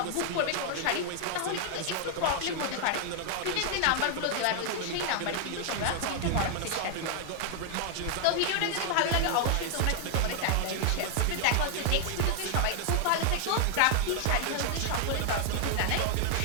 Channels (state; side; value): different; both; correlation 0.00